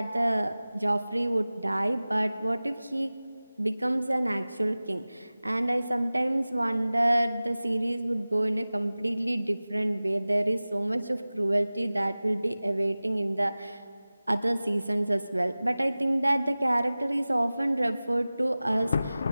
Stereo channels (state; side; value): inverted; both; correlation -0.98